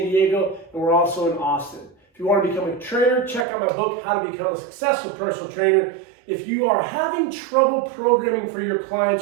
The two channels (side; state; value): left; drops out; at 3.5 s